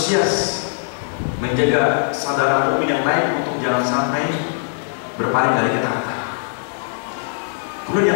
menjaga saudara mukmin yang lain untuk jangan sampai berpaling dari ketaatan. Kemudian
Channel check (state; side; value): silent; right; digital silence